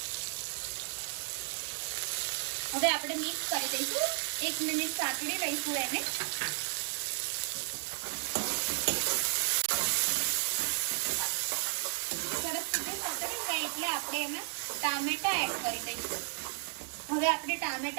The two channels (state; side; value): silent; left; digital silence